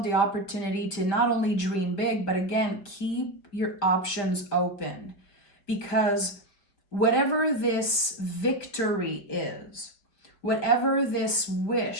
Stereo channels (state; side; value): late; right; 5.0 ms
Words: the opportunity to not only dream big, but again, keep your options open. Because whatever this victory is, whatever this